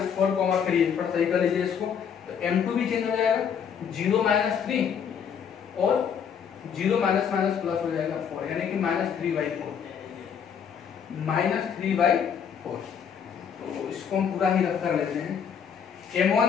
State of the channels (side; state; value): right; quieter; 7.5 dB